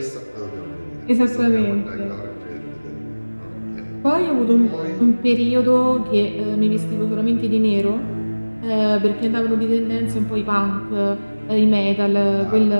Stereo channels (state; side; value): inverted; both; correlation -1.00